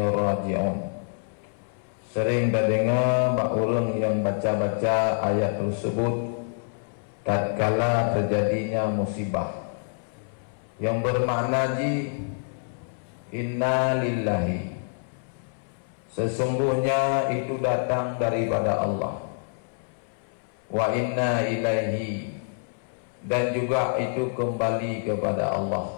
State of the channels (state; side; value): silent; right; 60 dB below the other